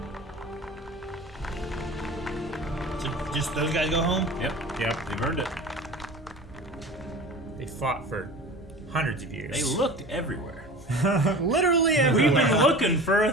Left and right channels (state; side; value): normal; both; correlation 0.37